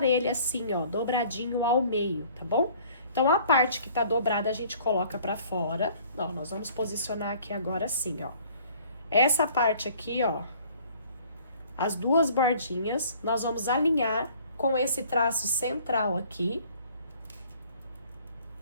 ele assim, ó, dobradinho ao meio, tá bom? Então, a parte que tá dobrada a gente coloca pra fora. Ó, nós vamos posicionar aqui agora assim, ó. Essa parte aqui, ó, as 2 bordinhas, nós vamos alinhar com esse traço central aqui.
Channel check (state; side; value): inverted; both; correlation -0.54